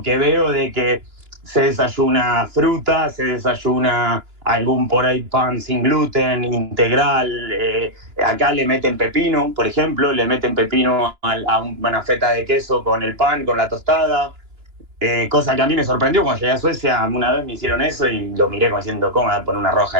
que veo de que se desayuna fruta, se desayuna algún por ahí pan sin gluten, integral, acá le meten pepino, por ejemplo, le meten pepino una feta de queso con el pan, con la tostada. Cosa que a mí me sorprendió cuando llegué a Suecia, una vez me hicieron eso y lo miré como diciendo, ¿cómo me voy a poner una roja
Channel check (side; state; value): left; late; 2.9 ms